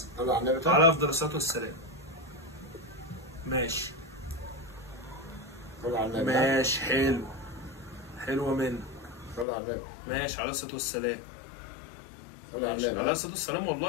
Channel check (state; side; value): drops out; right; at 9.5 s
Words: طلع على النبي. على افضل الصلاه والسلام. ماشي. طلع على النبي. ماشي حلو. حلوه منك. طلع على النبي. ماشي على الصلاه والسلام. طلع على النبي. على الصلاه والسلام